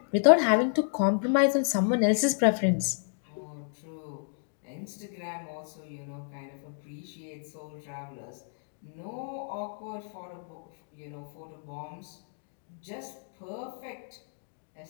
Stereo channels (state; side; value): silent; right; digital silence